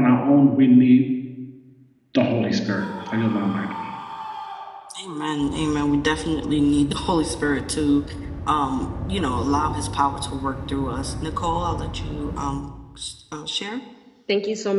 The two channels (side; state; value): both; identical; correlation 1.00